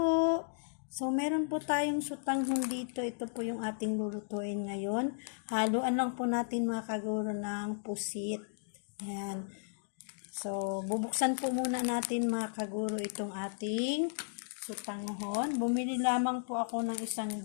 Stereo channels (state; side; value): silent; right; digital silence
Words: So meron po tayong sutanghon dito. Ito po yung ating lulutuin ngayon. Haluan lang po natin mga kaguro ng pusit. Ayan. So bubuksan po muna natin mga kaguro itong ating sutanghon. Bumili lamang po ako ng isang